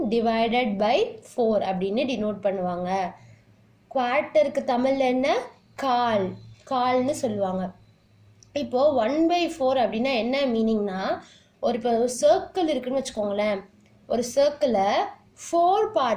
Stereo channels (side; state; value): both; identical; correlation 1.00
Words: divided by 4 அப்படின்னு டினோட் பண்ணுவாங்க. குவார்ட்டருக்கு தமிழ்ல என்ன கால்னு சொல்லுவாங்க. இப்போ 1/4 அப்படின்னா என்ன மீனிங்னா இப்போ சர்க்கிள் இருக்குன்னு வச்சுக்கோங்களேன். ஒரு சர்க்கிளை 4